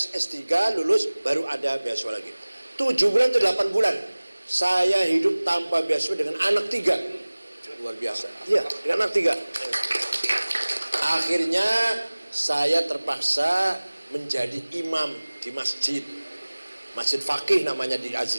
S3, lulus, baru ada beasiswa lagi. 7 bulan atau 8 bulan saya hidup tanpa beasiswa dengan anak 3. Luar biasa. Iya, dengan anak 3. Akhirnya saya terpaksa menjadi imam di masjid Faqih namanya di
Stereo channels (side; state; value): both; inverted; correlation -1.00